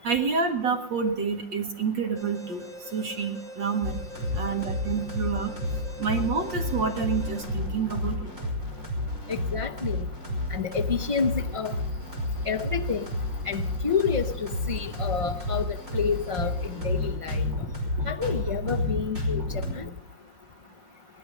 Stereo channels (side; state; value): left; late; 5.6 ms